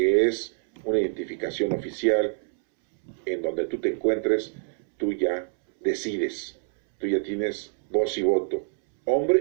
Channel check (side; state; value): left; silent; 61 dB below the other